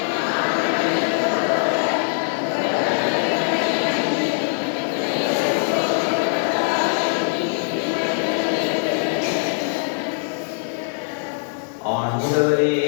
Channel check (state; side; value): silent; right; digital silence